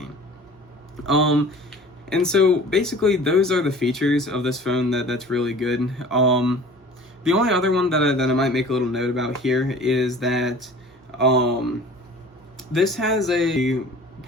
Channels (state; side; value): normal; both; correlation 0.44